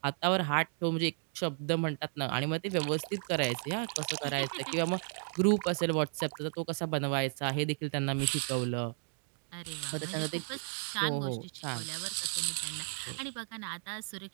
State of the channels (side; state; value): left; silent; 55 dB below the other